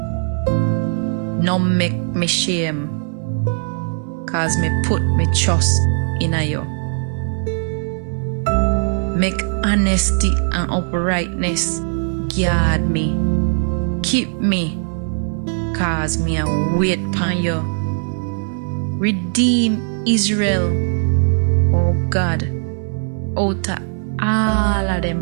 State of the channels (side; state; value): left; silent; digital silence